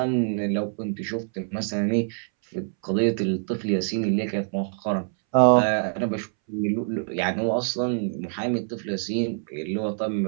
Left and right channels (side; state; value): left; silent; 61 dB below the other